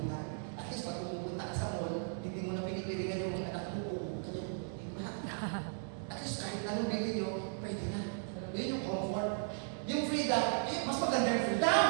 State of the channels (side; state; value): left; silent; digital silence